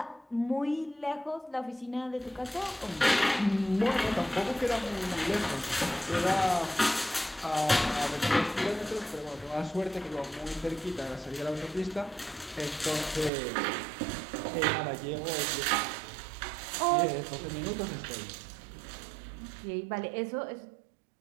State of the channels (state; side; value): drops out; left; at 13.3 s